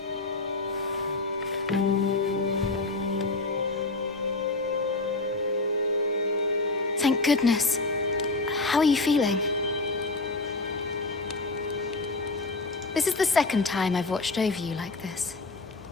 Thank goodness. How are you feeling? This is the second time I've watched over you like this,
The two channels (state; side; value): quieter; right; 3.3 dB